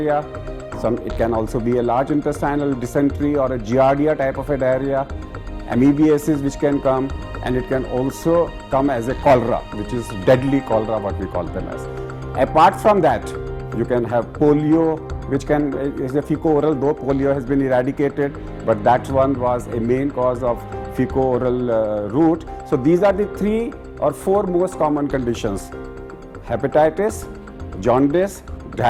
It can also be a large intestinal dysentery or a giardia type of a diarrhea, amoebiasis which can come, and it can also come as a cholera, which is deadly cholera, what we call them as. Apart from that, you can have polio, which is a fecal-oral, though polio has been eradicated, but that one was a main cause of fecal-oral route. So these are the 3 or 4 most common conditions: hepatitis, jaundice,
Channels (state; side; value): identical; both; correlation 1.00